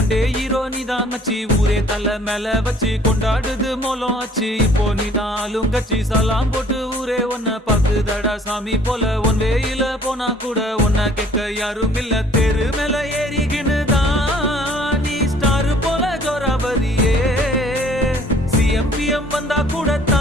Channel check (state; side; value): normal; both; correlation 0.56